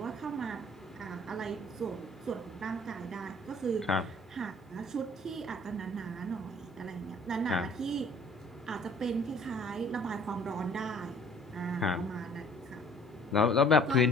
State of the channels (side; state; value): both; normal; correlation 0.54